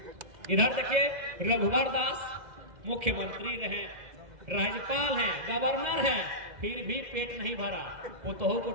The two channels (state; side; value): late; left; 2.0 ms